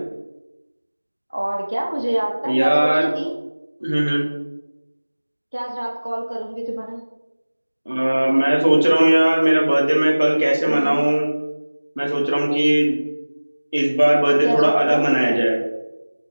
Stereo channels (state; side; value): inverted; both; correlation -1.00